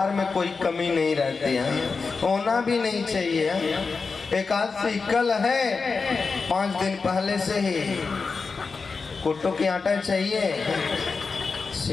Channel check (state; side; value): quieter; right; 4.6 dB